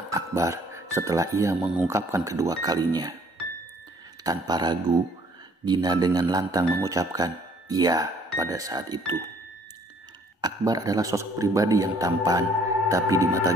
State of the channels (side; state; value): both; normal; correlation 0.59